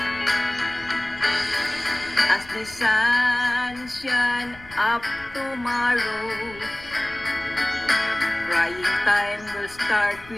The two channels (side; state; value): left; noise; rumble, 21 dB below the sound